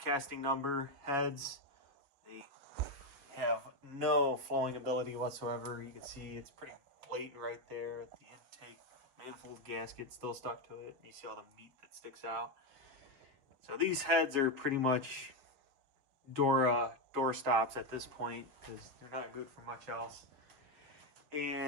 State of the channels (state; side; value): late; left; 6.9 ms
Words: number heads. They have no flowing ability whatsoever. You can see it's pretty blatant right there at the intake manifold gasket still stuck to it. You see all the meat that sticks out. So these heads are pretty much door stops at this point because they're not good for much else.